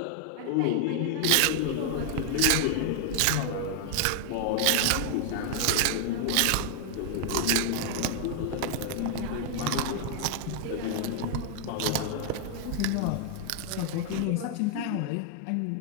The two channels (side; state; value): both; different; correlation 0.00